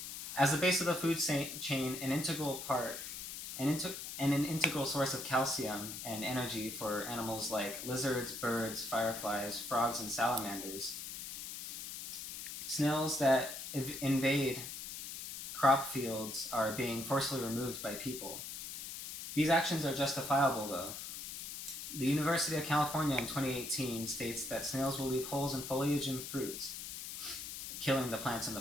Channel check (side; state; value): left; noise; hiss, 8 dB below the sound